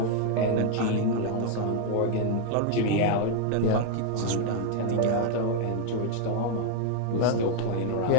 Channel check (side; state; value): both; different; correlation 0.00